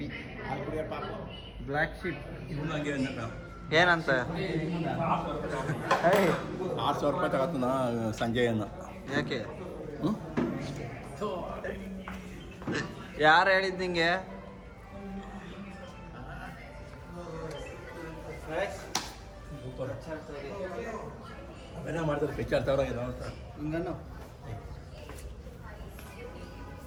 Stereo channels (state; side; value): identical; both; correlation 1.00